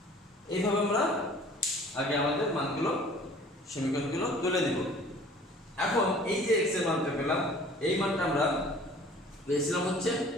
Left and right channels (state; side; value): normal; both; correlation 0.50